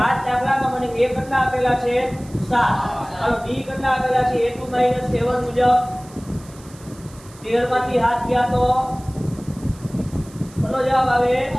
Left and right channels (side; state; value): right; noise; hiss, 23 dB below the sound